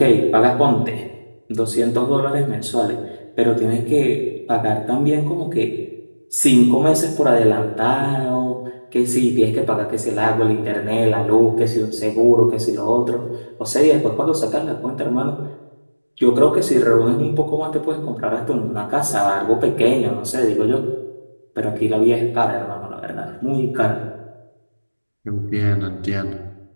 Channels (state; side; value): inverted; both; correlation -1.00